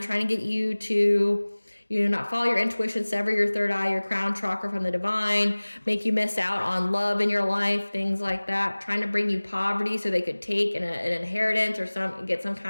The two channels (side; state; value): both; inverted; correlation -1.00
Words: to get you to, you know, not follow your intuition, sever your third eye, your crown chakra from the divine, make you miss out on love in your life, things like that, trying to bring you poverty so they could take an inheritance or get some